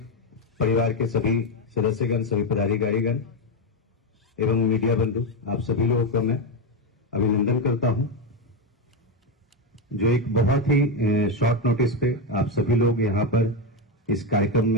परिवार के सभी सदस्यगण, सभी पदाधिकारीगण एवं मीडिया बंधु, आप सभी लोगों को मैं अभिनंदन करता हूं, जो एक बहुत ही शॉर्ट नोटिस पे आप सभी लोग यहां पर इस कार्यक्रम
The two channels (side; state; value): both; normal; correlation 0.09